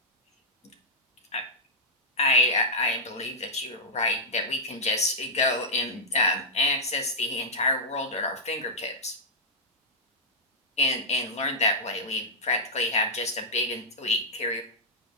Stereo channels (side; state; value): both; normal; correlation -0.08